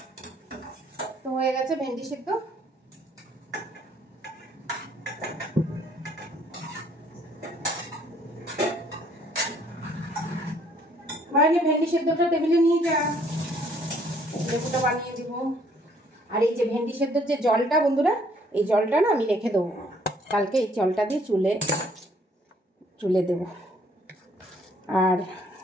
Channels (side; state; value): both; normal; correlation 0.63